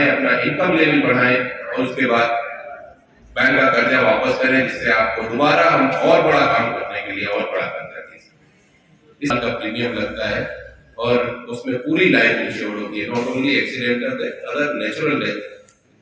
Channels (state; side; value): identical; both; correlation 1.00